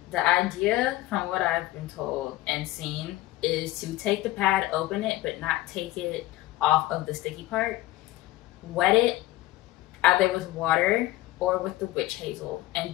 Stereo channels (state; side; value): quieter; right; 17.0 dB